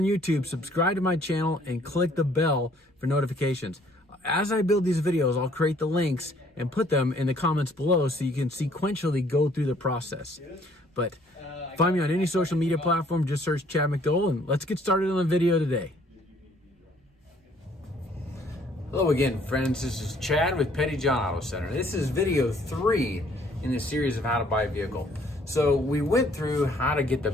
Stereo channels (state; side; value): normal; both; correlation 0.61